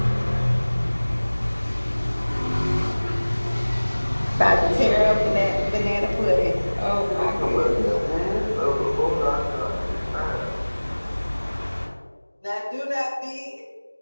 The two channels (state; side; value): inverted; both; correlation -1.00